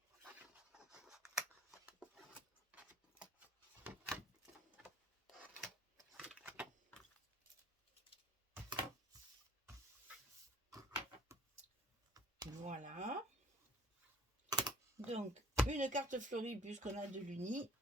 Voilà. Donc, une carte fleurie puisqu'on a de l'uni.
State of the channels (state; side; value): normal; both; correlation 0.54